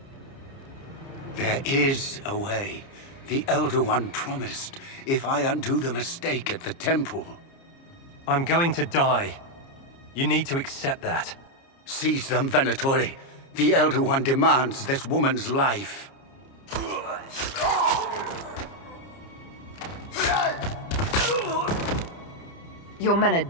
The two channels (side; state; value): right; late; 30 ms